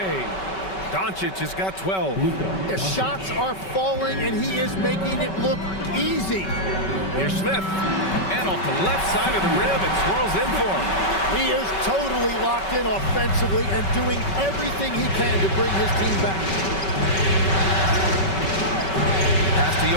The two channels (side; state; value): right; late; 5.3 ms